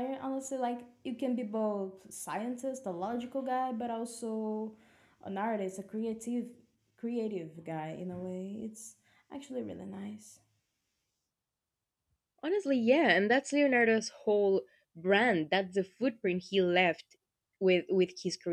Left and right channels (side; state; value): both; identical; correlation 1.00